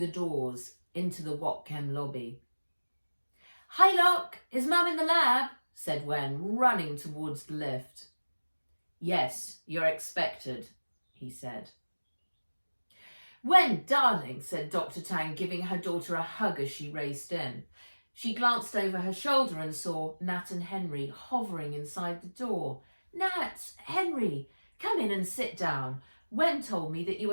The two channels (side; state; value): both; inverted; correlation -1.00